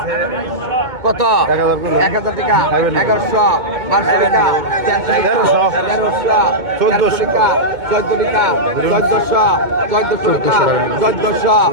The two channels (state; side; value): late; left; 2.2 ms